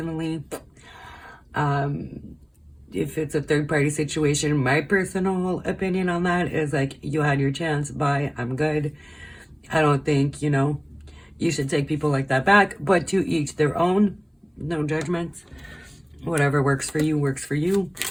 If it's a third-party situation, my personal opinion on that is like, you had your chance. Bye. I'm good. I don't think, you know, you should take people like that back. But to each their own. No judgments. Whatever works for you, works for you.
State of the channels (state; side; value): identical; both; correlation 1.00